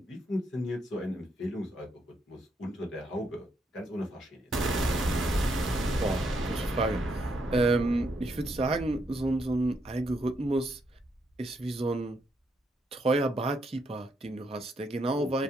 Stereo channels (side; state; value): both; normal; correlation 0.77